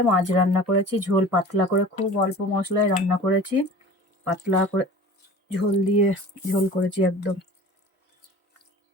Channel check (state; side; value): normal; both; correlation 0.41